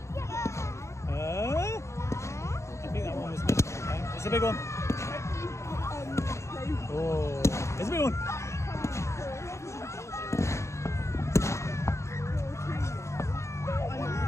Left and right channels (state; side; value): late; right; 0.14 ms